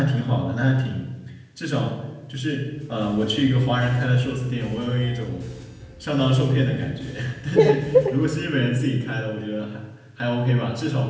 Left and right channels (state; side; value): identical; both; correlation 1.00